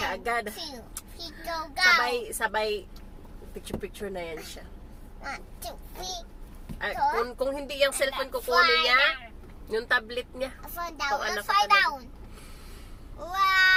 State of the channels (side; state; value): both; identical; correlation 1.00